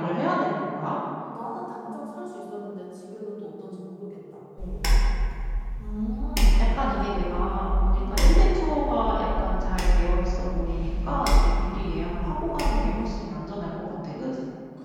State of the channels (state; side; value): identical; both; correlation 1.00